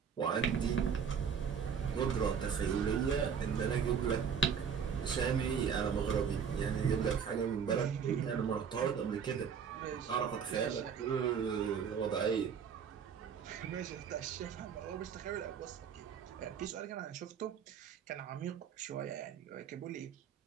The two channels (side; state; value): left; quieter; 6.9 dB